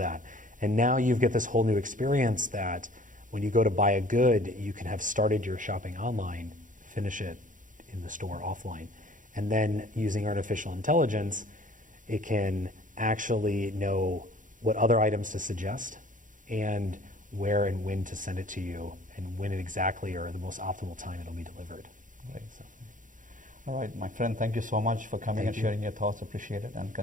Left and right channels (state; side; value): late; left; 0.38 ms